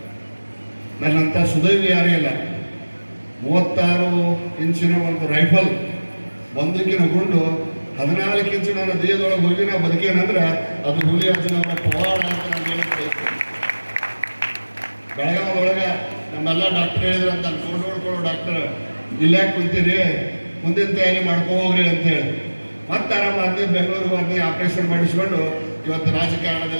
ನನ್ನಂಥ ಸುದೈವಿ ಯಾರೇ ಇಲ್ಲ. 36 ಇಂಚಿನ ಒಂದು ರೈಫಲ್, ಬಂದೂಕಿನ ಗುಂಡು 14 ಇಂಚು ನನ್ನ ದೇಹದೊಳಗೆ ಹೋಗಿ ನಾವು ಬದುಕೇನಂದ್ರೆ ಅದು ಹುಲಿ ಅಜ್ಜನವರ ಪವಾಡ ಅಂತ ನಾನು ಹೇಳಕ್ಕೆ ಬೆಳಗಾವದೊಳಗೆ ನಮ್ಮೆಲ್ಲ ಡಾಕ್ಟರ್ ಹೇಳಿದ್ರು ಅಂತ ನೋಡ್ಕೊಳ್ಳೋ ಡಾಕ್ಟರ್ ಇಲ್ಲಾಕೆ ಕುಂತೀರಿ, ಮುಂದಿನ ತಯಾರಿ ಹೋಗ್ರಿ ಅಂತೇಳಿ ಮತ್ತೆ ಆರಾಮ ಅಂದು ಬೆಂಗಳೂರಿಗೆ ಬಂದು ಆಪರೇಷನ್ ಮಾಡಿಸ್ಕೊಂಡು ಇವತ್ತು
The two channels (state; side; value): inverted; both; correlation -1.00